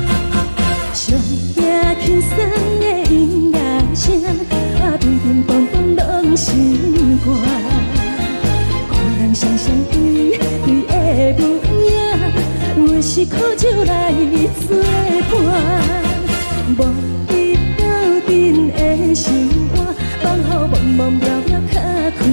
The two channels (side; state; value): both; inverted; correlation -1.00